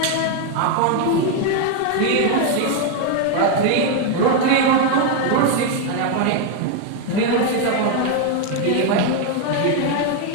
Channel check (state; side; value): different; both; correlation 0.01